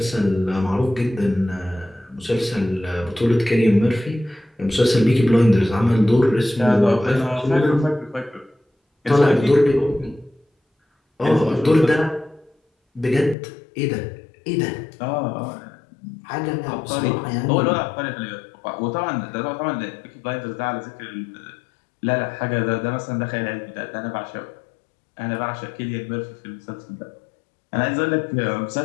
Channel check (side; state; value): right; drops out; at 13.4 s